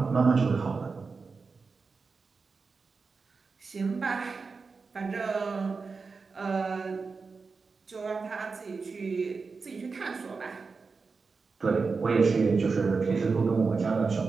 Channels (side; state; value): left; quieter; 4.6 dB